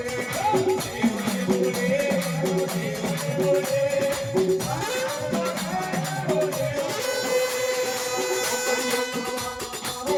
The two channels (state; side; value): identical; both; correlation 1.00